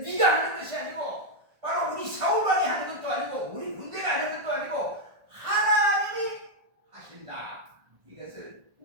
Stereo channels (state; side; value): late; left; 1.5 ms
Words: 네가 하는 것이 아니고 바로 우리 사울왕이 하는 것도 아니고 우리 군대가 하는 것도 아니고 하나님이 하신다, 이것을